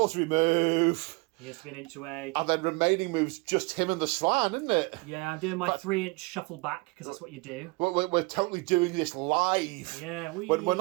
move. He has to be an inch away. And then remaining moves, just him and the Slan, isn't it? Yeah, I'm doing my 3-inch shuffle back, because that's what you do. We're totally doing this live. Yeah, When we're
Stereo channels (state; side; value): quieter; left; 27.2 dB